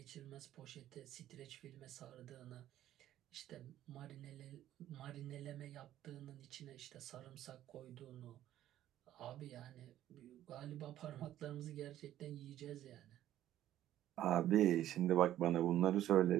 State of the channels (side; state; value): left; quieter; 12.7 dB